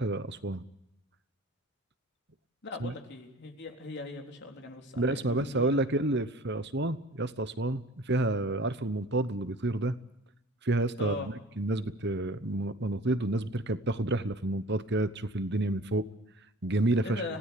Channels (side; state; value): both; normal; correlation 0.44